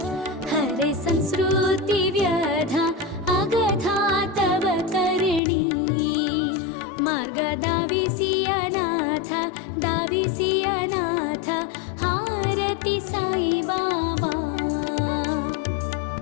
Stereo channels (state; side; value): drops out; right; at 5.4 s